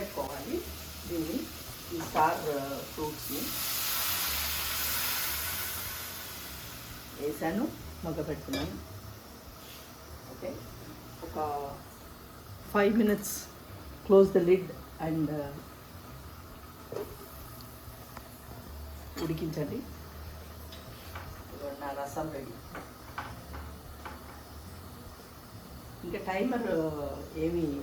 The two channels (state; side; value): identical; both; correlation 1.00